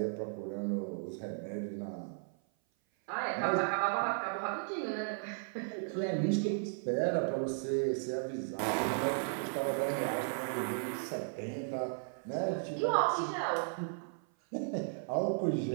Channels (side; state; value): left; silent; 54 dB below the other